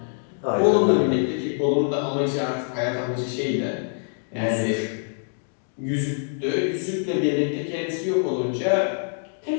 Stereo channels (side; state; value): right; silent; digital silence